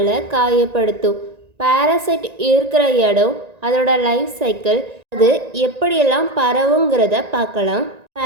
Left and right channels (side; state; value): left; late; 1.9 ms